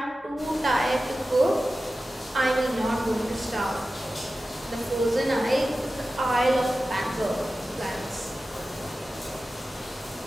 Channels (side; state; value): both; normal; correlation 0.94